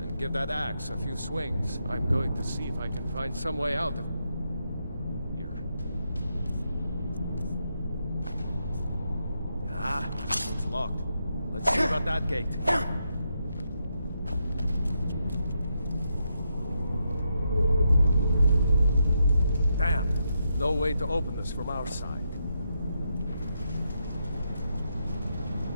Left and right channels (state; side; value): inverted; both; correlation -0.82